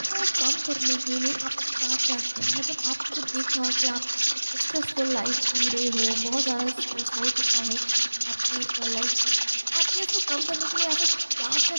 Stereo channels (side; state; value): both; inverted; correlation -1.00